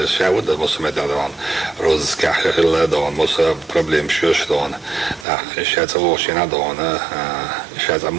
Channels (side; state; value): left; drops out; at 5.2 s